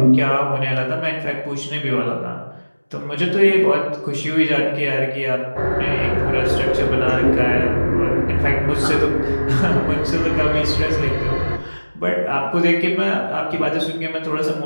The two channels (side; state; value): both; inverted; correlation -1.00